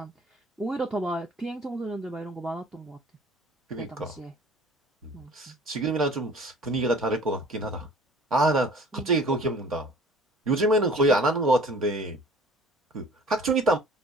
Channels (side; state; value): both; normal; correlation 0.48